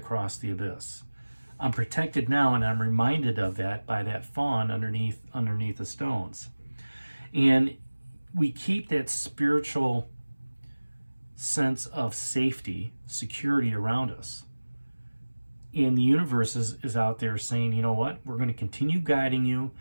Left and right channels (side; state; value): both; inverted; correlation -1.00